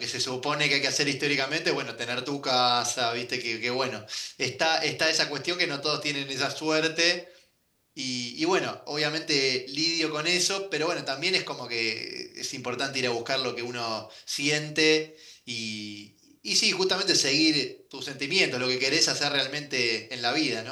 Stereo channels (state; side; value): identical; both; correlation 1.00